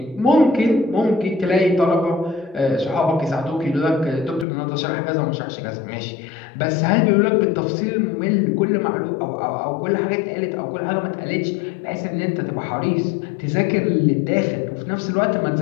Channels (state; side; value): drops out; right; at 4.5 s